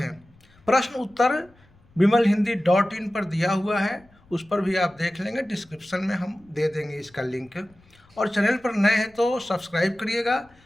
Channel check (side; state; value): left; noise; rumble, 30 dB below the sound